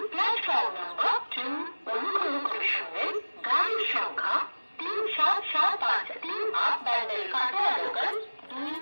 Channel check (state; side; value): inverted; both; correlation -1.00